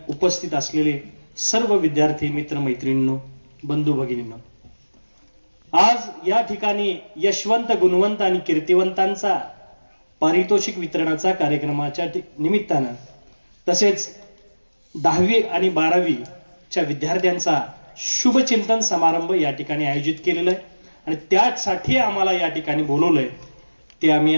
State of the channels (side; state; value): both; inverted; correlation -1.00